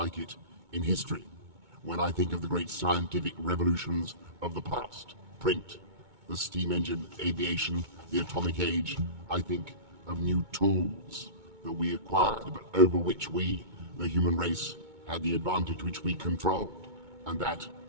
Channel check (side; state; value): left; late; 2.2 ms